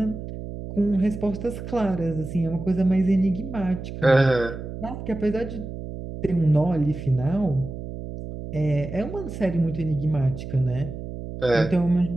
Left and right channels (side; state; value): right; noise; hum, 9 dB below the sound